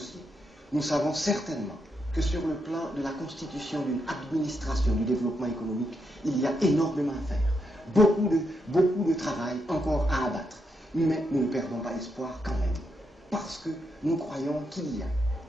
Nous savons certainement que sur le plan de la constitution d'une administration du développement économique, il y a énormément à faire. Beaucoup de travail encore à abattre. Mais nous ne perdons pas espoir quand même. Parce que nous croyons qu'il y a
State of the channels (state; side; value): normal; both; correlation 0.81